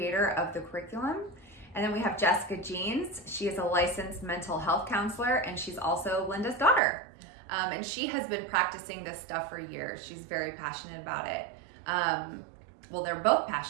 of the curriculum. And then we have Jessica Jeans. She is a licensed mental health counselor and she's also Linda's daughter. And she has been practicing this stuff for years. She's very passionate about it. Well, they're both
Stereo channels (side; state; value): left; drops out; at 6.8 s